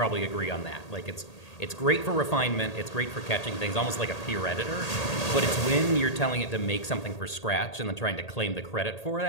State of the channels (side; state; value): right; late; 1.8 ms